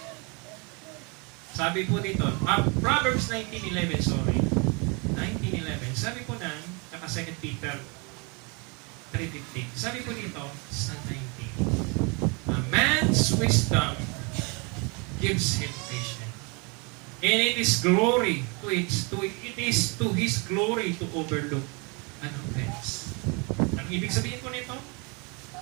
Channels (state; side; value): quieter; left; 31.6 dB